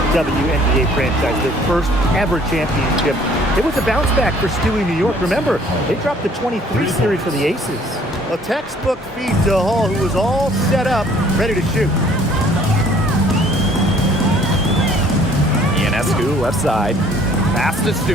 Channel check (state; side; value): normal; both; correlation 0.57